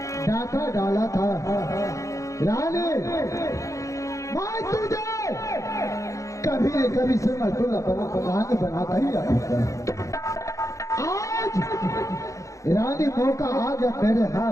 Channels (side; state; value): right; late; 0.15 ms